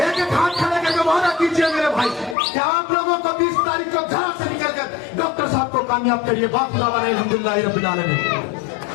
एक एक हाथ खड़े करके वादा कीजिए मेरे भाई कि आप लोगों को 20 तारीख को घर से निकलकर डॉक्टर साहब को कामयाब करिए। बात अल्हम्दुलिल्लाह रब्बिल आलमीन।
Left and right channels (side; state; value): right; drops out; at 2.4 s